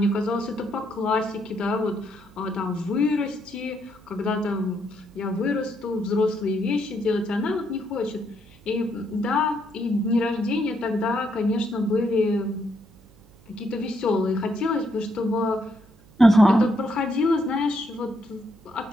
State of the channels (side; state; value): right; noise; hum, 26 dB below the sound